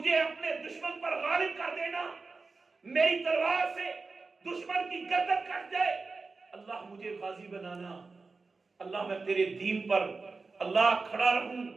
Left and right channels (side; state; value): left; quieter; 4.1 dB